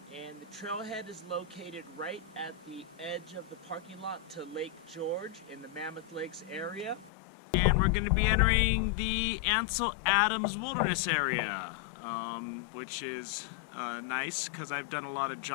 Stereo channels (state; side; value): drops out; right; at 7.1 s